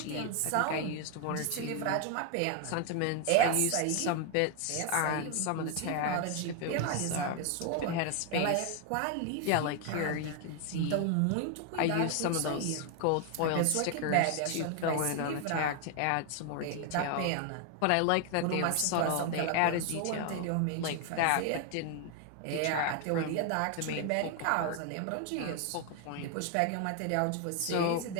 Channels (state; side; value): different; both; correlation 0.01